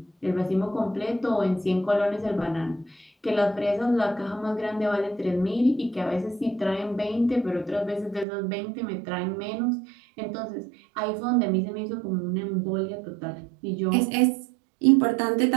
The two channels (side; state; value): left; drops out; at 8.2 s